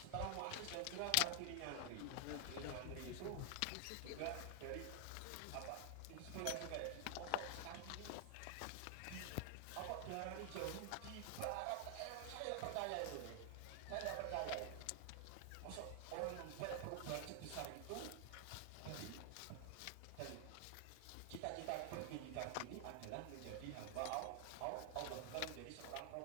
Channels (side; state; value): both; different; correlation 0.00